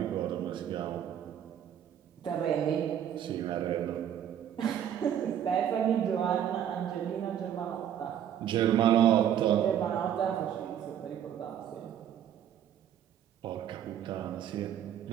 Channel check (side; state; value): left; quieter; 9.9 dB